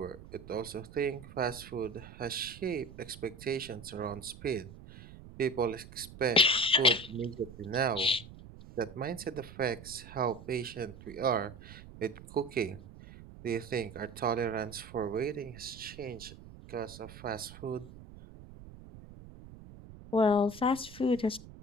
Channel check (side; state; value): right; noise; rumble, 16 dB below the sound